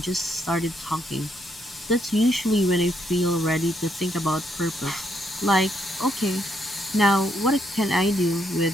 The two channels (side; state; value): both; normal; correlation 0.75